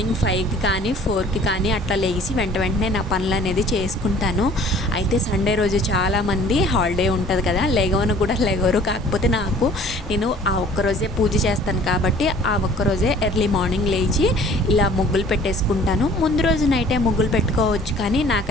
5కి కానీ 4కి కానీ అట్లా లేచి వెంటనే నా పనులు అనేది చేసుకుంటాను. అయితే సండే రోజు చాలామంది హాలిడే ఉంటుంది కదా, లెగవరు. కాకపోతే నేను ఆ ఒక్కరోజే పూజ చేస్తాను కాబట్టి ఆ ఒక్కరోజే ఎర్లీ మార్నింగ్ లేచి ఇలా ముగ్గులు పెట్టేసుకుంటాను. ముందు రోజు నైటే ముగ్గులు పెట్టుకోవచ్చు, కానీ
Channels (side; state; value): both; normal; correlation 0.51